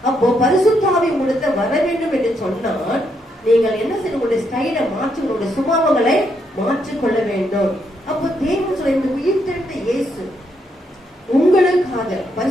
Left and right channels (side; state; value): both; normal; correlation 0.77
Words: அப்போ பரிசுத்த ஆவி உங்களுக்கு வர வேண்டும் என்று சொன்னால் நீங்கள் என்ன செய்ய, உங்களுடைய ஸ்டைலை மாற்றி உங்களுடைய சுபாவங்களை மாற்றிக்கொள்ள வேண்டும். அப்போ தேவன் சொல்ல, இந்த உயிர்த்தெழுந்த இயேசு உங்களுக்காக